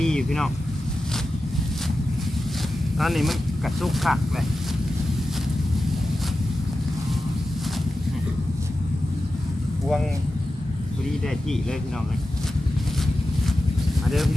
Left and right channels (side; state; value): both; normal; correlation 0.92